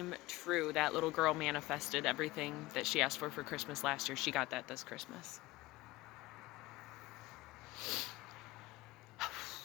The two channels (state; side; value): quieter; right; 19.6 dB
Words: true. That little girl manifested everything that she asked for Christmas last year. She got that this Christmas.